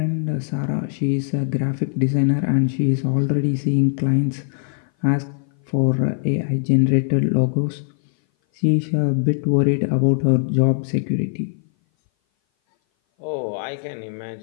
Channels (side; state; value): right; silent; 58 dB below the other